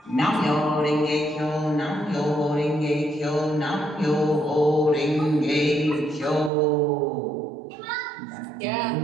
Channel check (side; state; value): left; drops out; at 6.5 s